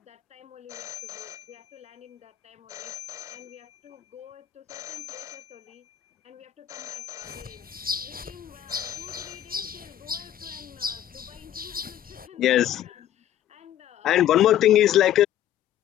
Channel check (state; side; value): quieter; right; 11.6 dB